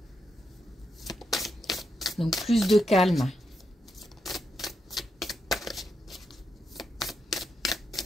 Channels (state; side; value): normal; both; correlation 0.83